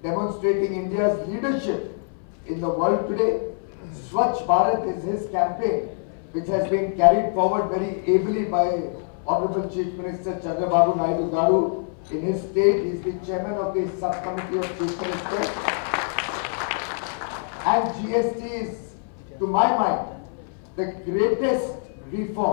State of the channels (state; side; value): silent; right; 62 dB below the other